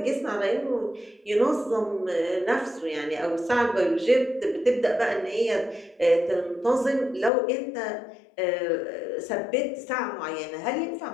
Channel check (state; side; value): drops out; right; at 7.3 s